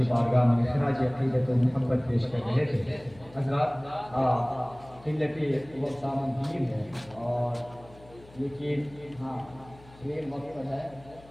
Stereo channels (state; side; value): noise; left; hum, 23 dB below the sound